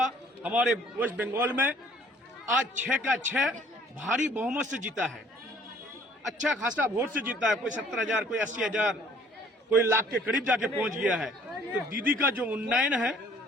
हमारे वेस्ट बंगाल में, आज 6 का 6 भारी बहुमत से जीता है, अच्छा खासा वोट से जीता है। कोई 70,000, कोई 80,000, कोई लाख के करीब जाके पहुंच गया है। तो दीदी का जो उन्नयन है,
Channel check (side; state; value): both; normal; correlation 0.57